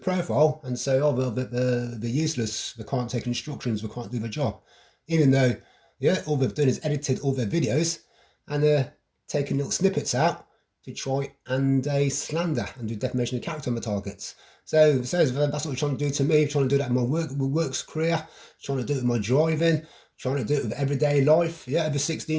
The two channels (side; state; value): both; identical; correlation 1.00